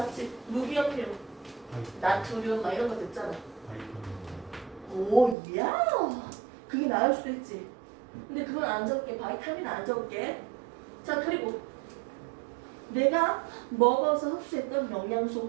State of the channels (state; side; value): drops out; left; at 5.4 s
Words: 무기염류, 나트륨 막 이런 거 됐잖아. 오, 야, 그게 나을 수도 있지. 근데 그건 안 적게, 바이타민 안 적게. 자, 그리고 내가 먹어서 흡수했던 영양소,